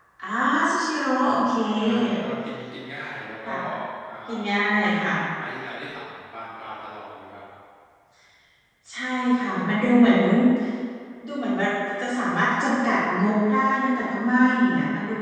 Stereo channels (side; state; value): both; identical; correlation 1.00